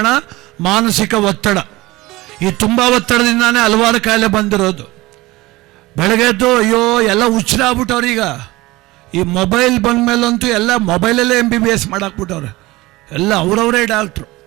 ಮಾನಸಿಕ ಒತ್ತಡ. ಈ ತುಂಬ ಒತ್ತಡದಿಂದಾನೇ ಹಲವಾರು ಕಾಯಿಲೆ ಬಂದಿರೋದು. ಬೆಳಗ್ಗೆದ್ದು ಅಯ್ಯೋ ಎಲ್ಲ ಹುಚ್ಚರಾಗ್ಬಿಟ್ಟವ್ರು. ಈಗ ಈ ಮೊಬೈಲ್ ಬಂದ ಮೇಲಂತೂ ಎಲ್ಲ ಮೊಬೈಲಲ್ಲೇ MBBS ಮಾಡಾಕ್ಬಿಟ್ಟವ್ರೆ. ಎಲ್ಲ ಅವರವರೇ ಡಾಕ್ಟ್ರು.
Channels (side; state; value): left; quieter; 20.0 dB